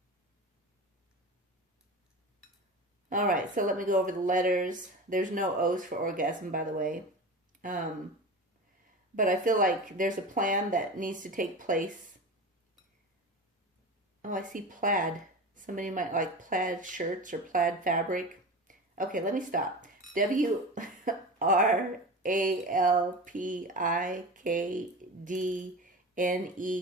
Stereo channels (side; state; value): both; normal; correlation 0.29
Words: All right, so let me go over the letters. There's no O's for orgasm, by the way. But I feel like there's a plan that needs to take place. Oh, I see plaid. Somebody might like plaid shirts or plaid fabric. Okay, let me stop.